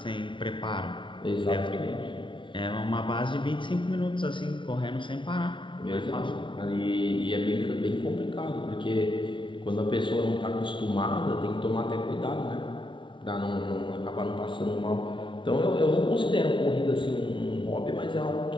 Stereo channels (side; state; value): right; late; 0.24 ms